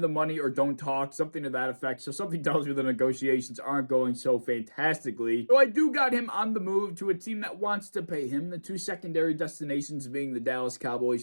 money or don't talk," something to that effect. So something tells me the negotiations aren't going so fantastically. So I do got him on the move to a team that wants to pay him. The two secondary destinations being the Dallas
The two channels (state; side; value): inverted; both; correlation -1.00